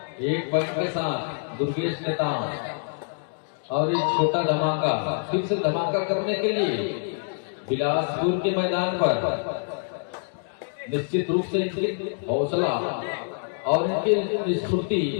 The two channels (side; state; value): right; silent; digital silence